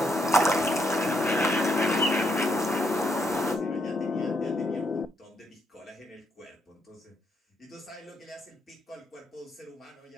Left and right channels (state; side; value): normal; both; correlation 0.75